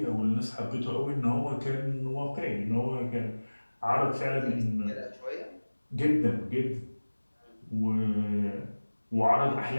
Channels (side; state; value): both; inverted; correlation -1.00